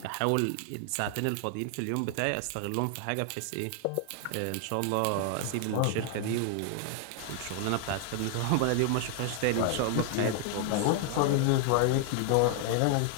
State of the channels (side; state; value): both; different; correlation 0.00